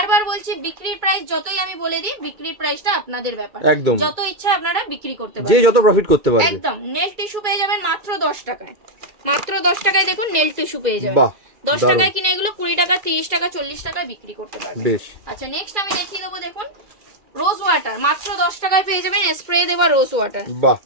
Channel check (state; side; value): late; left; 2.4 ms